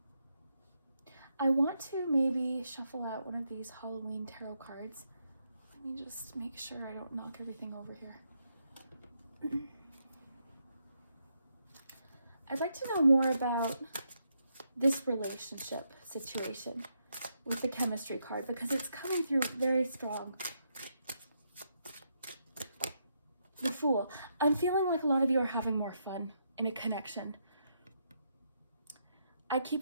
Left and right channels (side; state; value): both; inverted; correlation -0.79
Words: I want to maybe shuffle out one of these Halloween tarot cards. Let me just make sure I don't knock everything over here. I'd like to know more about this relationship situation with the chemistry card because it's coming through very strong. The Fool. I'm feeling like a lot of you are having more fun in a connection. I